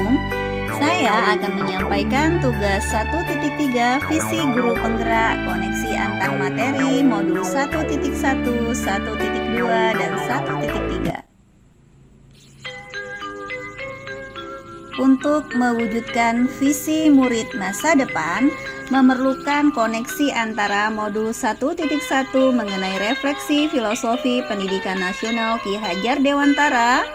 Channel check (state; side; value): identical; both; correlation 1.00